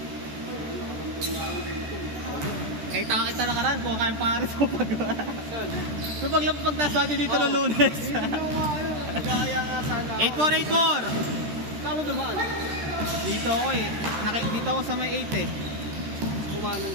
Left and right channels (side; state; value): left; late; 14 ms